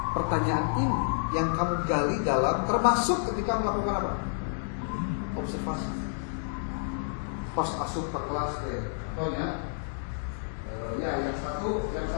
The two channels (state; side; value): silent; right; digital silence